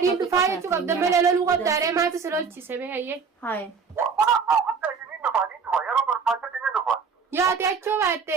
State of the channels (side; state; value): left; quieter; 5.6 dB